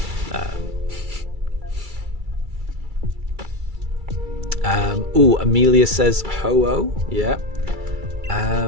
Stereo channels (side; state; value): left; late; 2.3 ms